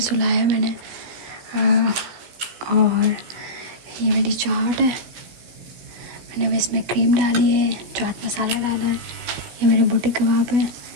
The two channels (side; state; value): left; late; 17 ms